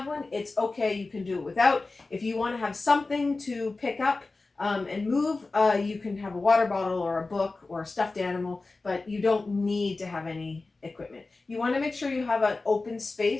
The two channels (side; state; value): right; quieter; 3.6 dB